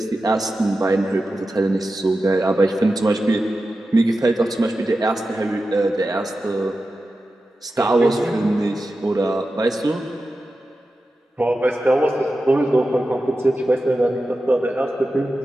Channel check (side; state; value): both; normal; correlation 0.92